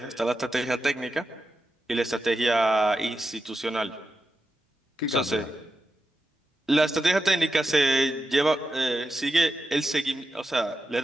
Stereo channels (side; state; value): both; normal; correlation 0.89